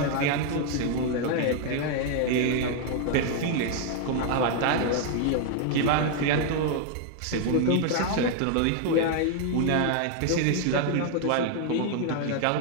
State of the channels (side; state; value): both; different; correlation 0.00